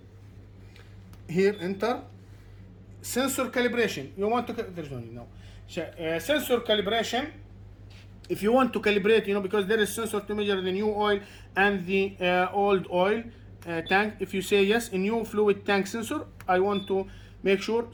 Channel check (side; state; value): both; identical; correlation 1.00